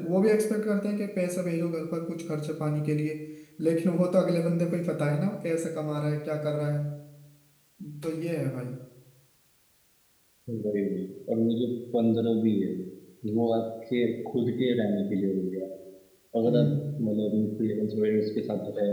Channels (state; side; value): identical; both; correlation 1.00